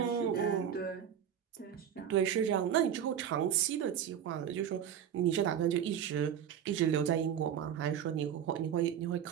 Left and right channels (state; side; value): quieter; left; 9.1 dB